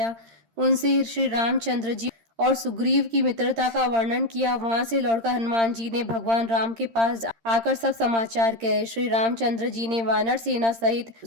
उनसे श्री रामचंद्र जी और सुग्रीव की मित्रता का वर्णन किया। वहां से लौटकर हनुमान जी ने भगवान राम के पास आकर सब समाचार कहे। श्री रामचंद्र जी ने वानर सेना सहित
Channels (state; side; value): late; left; 13 ms